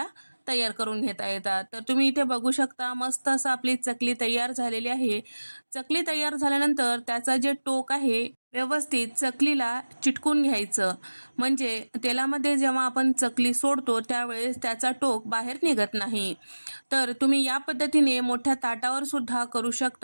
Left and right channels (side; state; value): both; inverted; correlation -1.00